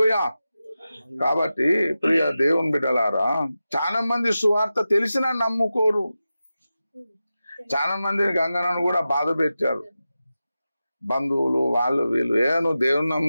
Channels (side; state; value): both; inverted; correlation -0.93